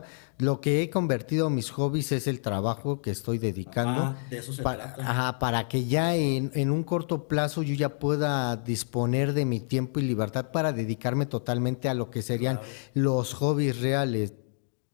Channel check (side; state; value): right; silent; digital silence